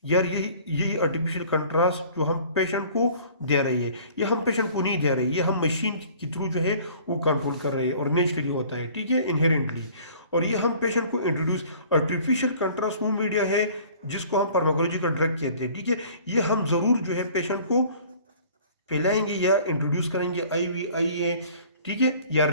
यार यही आर्टिफिशियल कंट्रास्ट जो हम पेशेंट को दे रही है, ये हम पेशेंट को नहीं दे रही है, ये हम मशीन के थ्रू जो है वो कंट्रोल कर रहे हैं और नेचुरली होता है, ठीक है, इनहेरेंटली। और ये हम पेशेंट को इंट्रोड्यूस, आर्टिफिशियल कंट्रास्ट वो मीडिया है जिसको हम फार्माकोलॉजिकल ड्रग कहते हैं, ठीक है। ये हम ज़रूर जो है पेशेंट को पिलाएंगे या इंट्रोड्यूस करेंगे IVIA, ठीक है, या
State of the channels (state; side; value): inverted; both; correlation -0.50